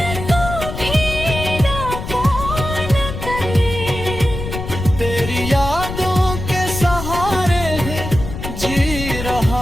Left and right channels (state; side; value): noise; left; rumble, 7 dB below the sound